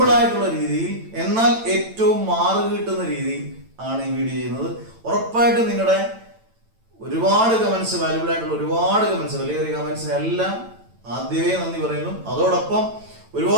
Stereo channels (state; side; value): late; left; 9.0 ms